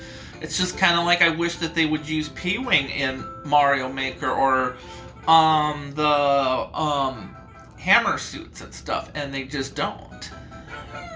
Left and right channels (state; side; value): identical; both; correlation 1.00